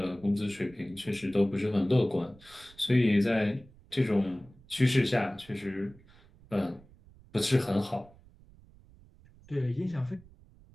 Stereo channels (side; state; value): right; noise; rumble, 25 dB below the sound